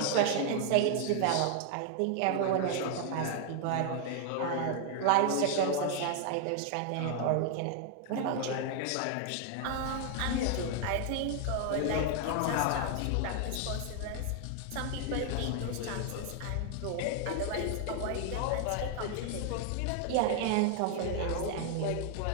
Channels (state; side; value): different; both; correlation 0.00